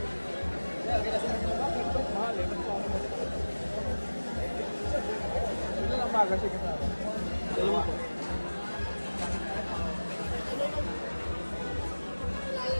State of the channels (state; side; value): inverted; both; correlation -1.00